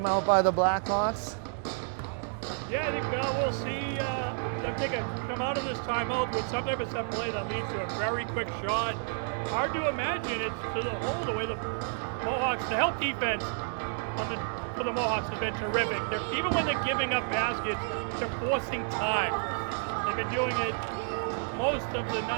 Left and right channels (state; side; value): silent; left; 58 dB below the other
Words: by the Blackhawks? Yeah, I think we'll see them come out of this timeout with some type of set play that leads to a very quick shot. Hard to imagine it's to the hole the way the Mohawks, the help defense for the Mohawks has been terrific. Even when they're giving up baskets, they're forcing time. They've been doing it most of the